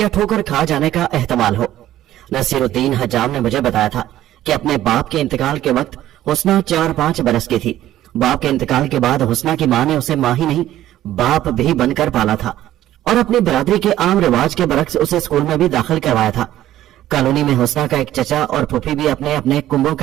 ठोकर खा जाने का एहतमाल हो। नसीरुद्दीन हजाम ने मुझे बताया था कि अपने बाप के इंतकाल के वक्त हुस्ना 4-5 बरस की थी। बाप के इंतकाल के बाद हुस्ना की माँ ने उसे माँ ही नहीं बाप भी बनकर पाला था और अपनी बरादरी के आम रिवाज के बरक्स उसे स्कूल में भी दाखिल करवाया था। कॉलोनी में हुस्ना का एक चचा और फूफी भी अपने अपने कुंभों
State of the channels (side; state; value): left; quieter; 13.4 dB